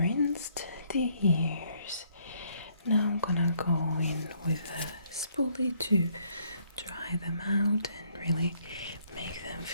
the ears. Now I'm gonna go in with a spoolie to dry them out and really make them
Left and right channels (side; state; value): both; inverted; correlation -0.68